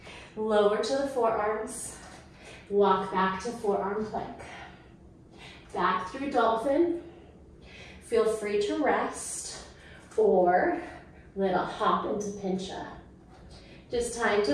Lower to the forearms. Walk back to forearm plank. Back through dolphin. Feel free to rest or little hop into pincha. Just time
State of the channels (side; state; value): both; identical; correlation 1.00